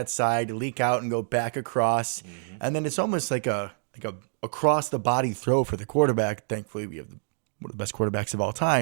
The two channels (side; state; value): left; silent; digital silence